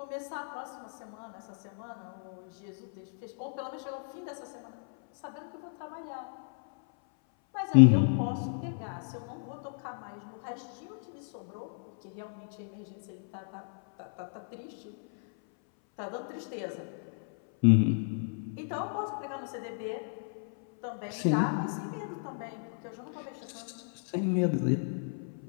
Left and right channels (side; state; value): right; silent; 56 dB below the other